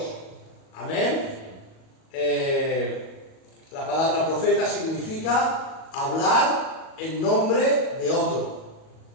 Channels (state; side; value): late; right; 37 ms